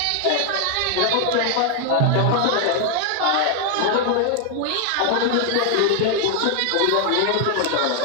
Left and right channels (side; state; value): both; different; correlation 0.00